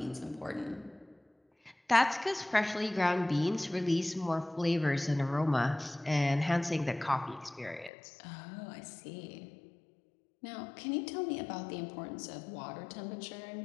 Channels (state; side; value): drops out; right; at 7.9 s